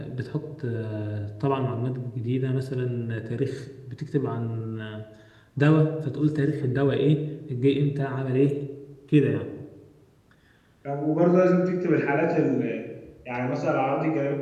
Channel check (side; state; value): both; identical; correlation 1.00